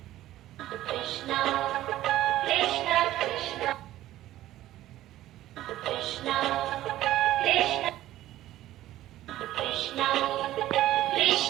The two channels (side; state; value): left; quieter; 14.3 dB